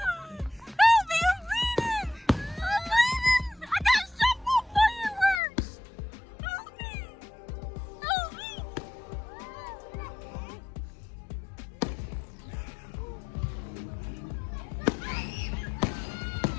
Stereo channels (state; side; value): drops out; right; at 5.4 s